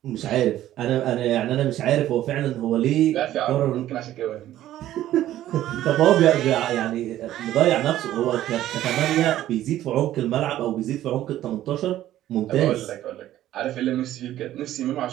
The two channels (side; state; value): left; quieter; 13.3 dB